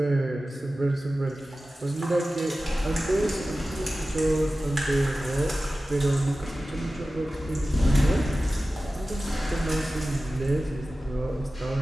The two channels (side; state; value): both; normal; correlation 0.95